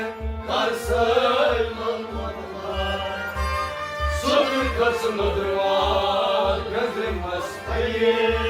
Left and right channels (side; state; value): both; identical; correlation 1.00